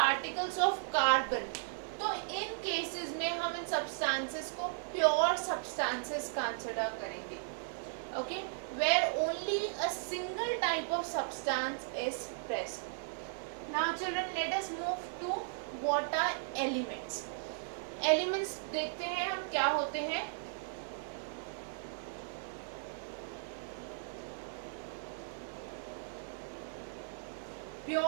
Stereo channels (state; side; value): silent; left; digital silence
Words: of carbon. तो इन केसेस में हम इन सब्सटेंसेस को pure substances consider करेंगे. Okay, where only a single type of substance is present. Now children, let us move to what are elements. Elements देखते हैं हम क्या होते हैं.